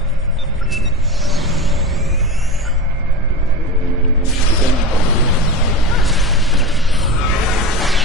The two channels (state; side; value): normal; both; correlation 0.27